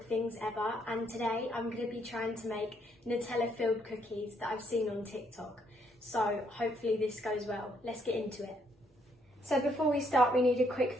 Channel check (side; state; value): both; normal; correlation 0.72